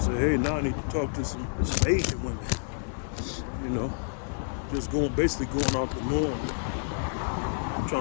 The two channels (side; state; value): right; silent; digital silence